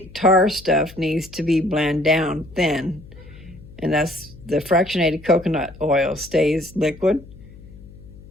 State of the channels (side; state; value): left; noise; hum, 19 dB below the sound